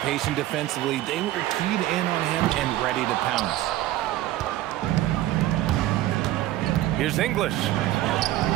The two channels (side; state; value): left; quieter; 15.0 dB